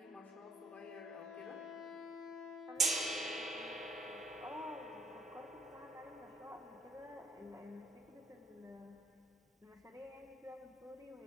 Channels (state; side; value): normal; both; correlation 0.61